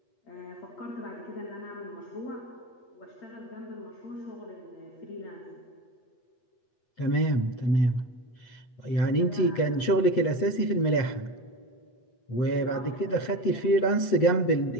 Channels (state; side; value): late; right; 8.2 ms